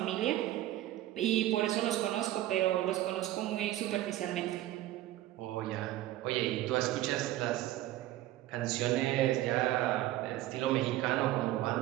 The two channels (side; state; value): left; quieter; 14.7 dB